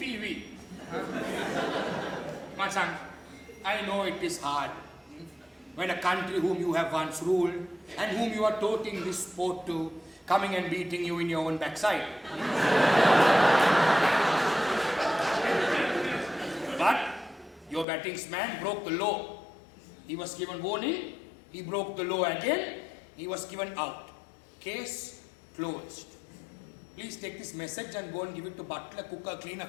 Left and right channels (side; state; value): right; drops out; at 17.9 s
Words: Machan, I know it is hard. When a country whom you have once ruled and whom you are toting this sport to, coming and beating you in your own backside. But your battingsman broke the law. He was given warning. He broke the law again. He was given out. Case closed. Please take this message and go and give it to butler, cooker, cleaner,